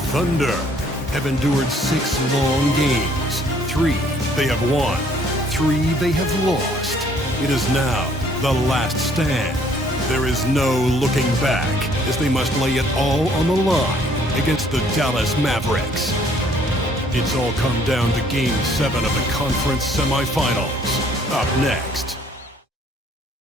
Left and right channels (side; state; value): both; normal; correlation 0.61